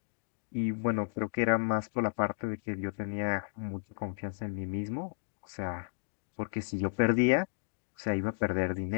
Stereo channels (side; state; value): right; silent; digital silence